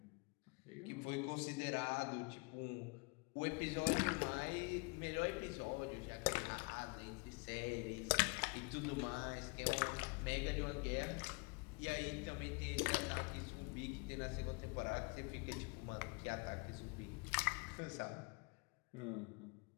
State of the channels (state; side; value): quieter; right; 31.4 dB